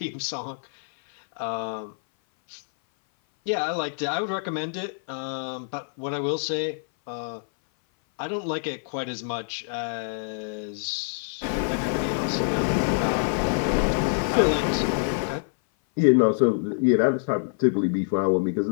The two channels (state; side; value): silent; right; 57 dB below the other